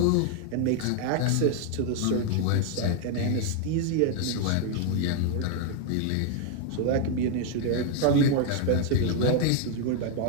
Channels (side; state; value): both; different; correlation 0.00